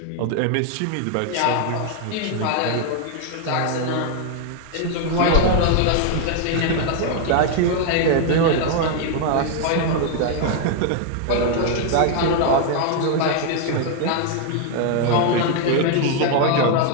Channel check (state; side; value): different; both; correlation 0.00